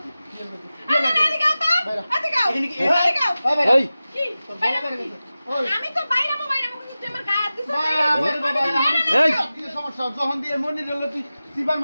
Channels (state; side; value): inverted; both; correlation -0.95